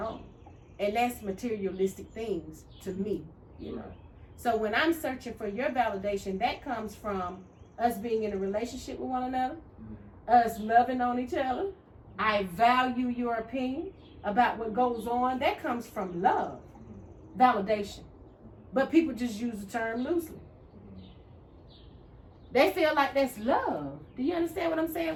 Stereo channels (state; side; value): identical; both; correlation 1.00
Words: And that's materialistic things to me, you know. So when I'm searching for your validation, that comes from us being in a relationship with one another, us loving on each other. I value your opinion about what goes on. That comes from love, validation. But people just use the term loosely. They feel like that's love. Do you understand what I'm saying?